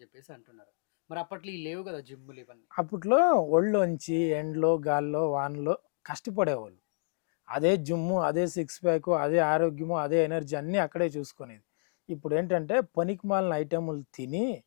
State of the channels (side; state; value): right; silent; digital silence